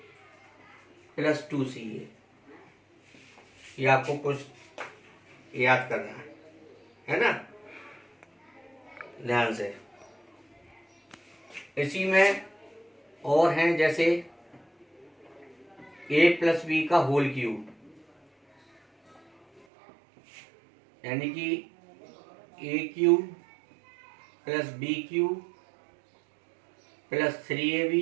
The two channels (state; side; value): drops out; left; at 19.7 s